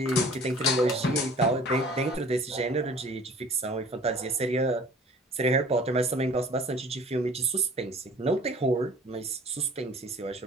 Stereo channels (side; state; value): both; normal; correlation 0.48